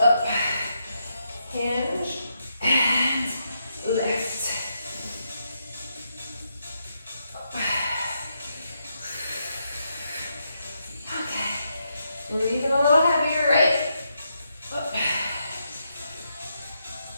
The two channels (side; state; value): both; inverted; correlation -0.81